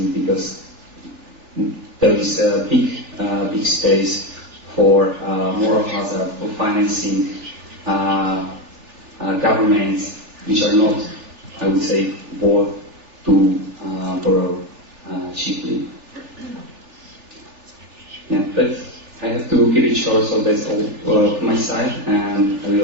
because there is a big space for moral hazard, for financing governments which are not, I would say, worth to borrow cheaply. Yeah, but I have to keep it short, so that's all from my side, and I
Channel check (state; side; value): late; left; 3.4 ms